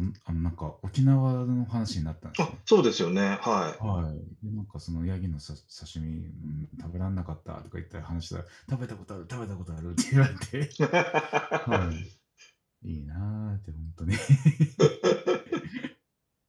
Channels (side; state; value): both; identical; correlation 1.00